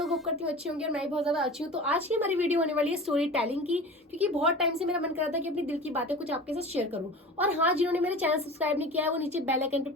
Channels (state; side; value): normal; both; correlation 0.35